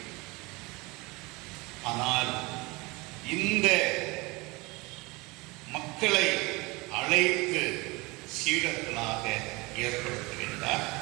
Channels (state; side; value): quieter; left; 24.4 dB